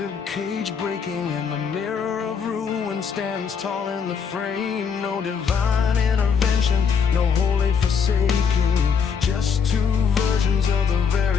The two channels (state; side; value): quieter; right; 6.4 dB